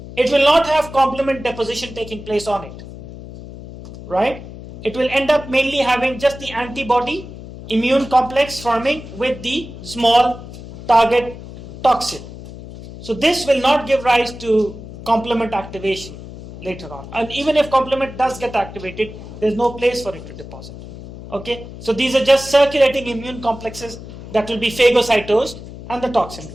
it will not have complement deposition taking place on it, right? It will end up mainly having just the antibody immune complex forming with the small target toxin. So this will not give rise to complement activation later on. And even if complement does get activated, there's no place for it to deposit. Okay? So these are just circulating immune complexes that will be phagocytosed and the toxin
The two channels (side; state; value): left; noise; hum, 14 dB below the sound